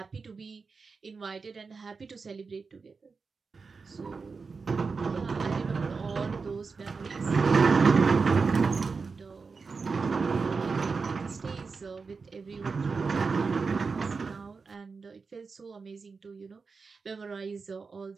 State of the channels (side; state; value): left; quieter; 4.7 dB